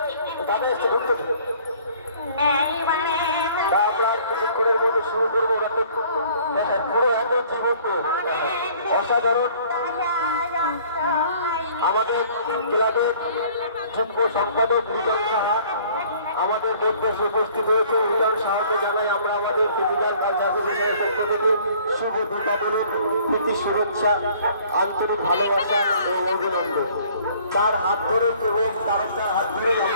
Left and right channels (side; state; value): both; inverted; correlation -0.55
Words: দাদা এসছে ঢুকতে আমরা কিছুক্ষণের মধ্যে শুরু করবো পুরো একদম জীবন্ত অসাধারণ আমাদের ক্লাবের যুগ্ম সম্পাদক মিলন সাহা আমাদের মধ্যে উপস্থিত হয়েছে। মিলন সাহাকে জানাই আমরা আমাদের ফিজিক্যাল কালচার অ্যাসোসিয়েশনের পক্ষ থেকে শুভ দীপাবলি প্রীতি শুভেচ্ছা আন্তরিক ভালোবাসা ও অভিনন্দন। তার হাত ধরে এবং তার হাত ধরে